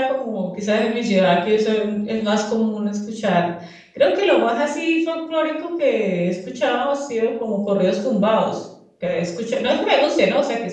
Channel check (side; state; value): both; identical; correlation 1.00